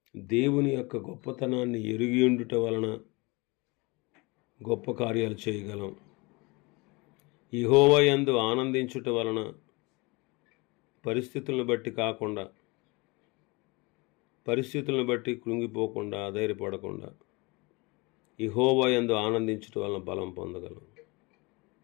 దేవుని యొక్క గొప్పతనాన్ని ఎరిగి ఉండుట వలన గొప్ప కార్యాలు చేయగలం. యెహోవా యందు ఆనందించుట వలన పరిస్థితులను బట్టి కాకుండా, పరిస్థితులను బట్టి కృంగిపోకుండా, అధైర్యపడకుండా యెహోవా యందు ఆనందించుట వలన బలం పొందగలం.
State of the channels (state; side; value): quieter; right; 26.1 dB